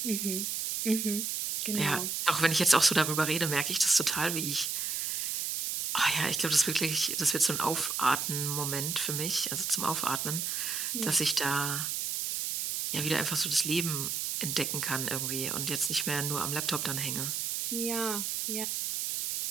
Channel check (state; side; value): noise; right; hiss, 1 dB below the sound